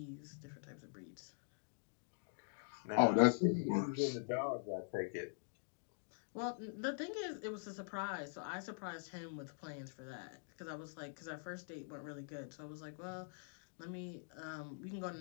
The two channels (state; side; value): silent; right; digital silence